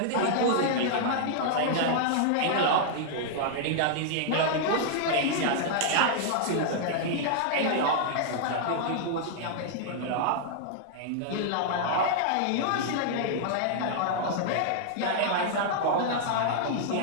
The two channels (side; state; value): both; different; correlation -0.01